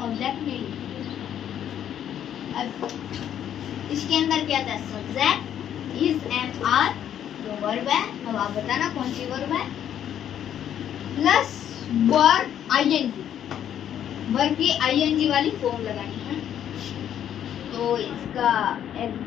ऑब्जेक्ट नहीं लिखेंगे। अब इसके अंदर क्या था, सब्जेक्ट इज एम आर जो वर्ब है, अब आप बताना कौन सी वर्ब है, प्लस वर्ब आईएनजी, वर्ब की आईएनजी वाली फॉर्म लगानी है। तो इसका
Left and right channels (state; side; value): quieter; right; 10.1 dB